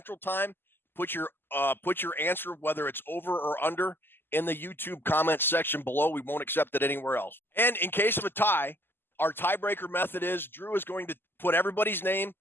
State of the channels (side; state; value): right; late; 0.10 ms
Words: Time. Put your answer, whether it's over or under, in the YouTube comment section below. We won't accept it anywhere else. And in case of a tie, our tiebreaker method is Drew is going to put everybody's name